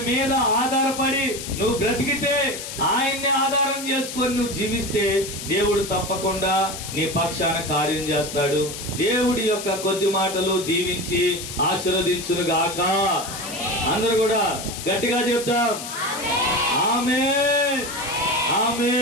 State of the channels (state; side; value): noise; left; hiss, 9 dB below the sound